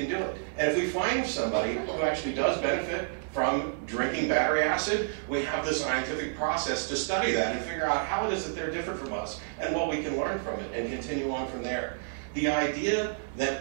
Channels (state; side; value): silent; left; 58 dB below the other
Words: do it. And if we find somebody who actually does benefit from drinking battery acid, we have this scientific process to study that and figure out how it is that they're different from us and what we can learn from it and continue on from there. The idea